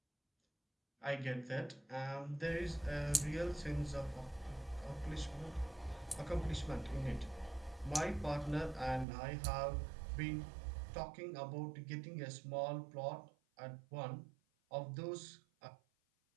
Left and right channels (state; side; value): drops out; left; at 9.1 s